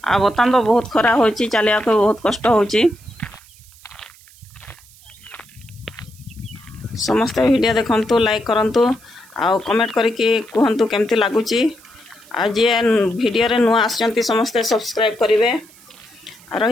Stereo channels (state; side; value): noise; right; hiss, 25 dB below the sound